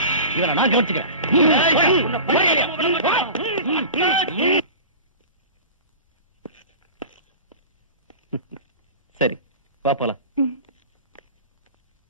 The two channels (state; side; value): inverted; both; correlation -0.34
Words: இவனை நான் கவனிச்சுக்கிறேன். சரி, வா போலாம்.